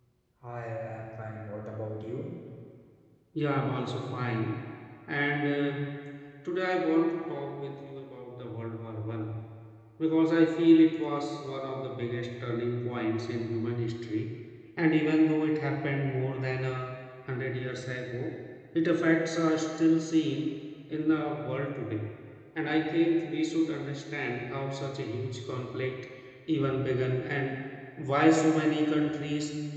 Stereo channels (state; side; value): identical; both; correlation 1.00